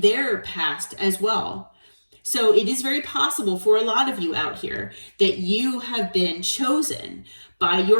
their past as well. So it is very possible for a lot of you out here that you have been chosen by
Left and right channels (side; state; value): both; inverted; correlation -1.00